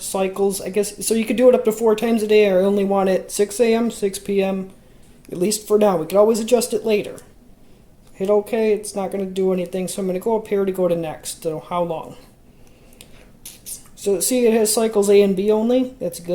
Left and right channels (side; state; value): both; identical; correlation 1.00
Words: I guess. So you could do it up to 4 times a day, or I only want it 6 a.m., 6 p.m., at least for now. We could always adjust it later. Hit OK. It's not going to do anything. So I'm going to go up here to go to next. So how long? So see, it has cycles A and B only. That's a